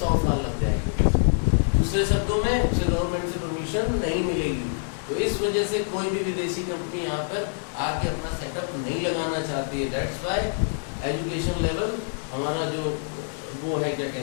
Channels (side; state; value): right; silent; 57 dB below the other